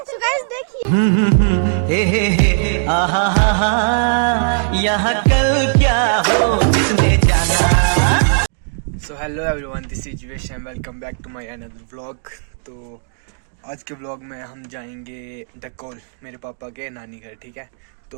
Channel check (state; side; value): silent; left; digital silence